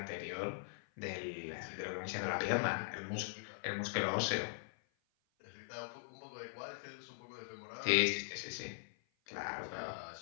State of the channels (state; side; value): silent; right; 50 dB below the other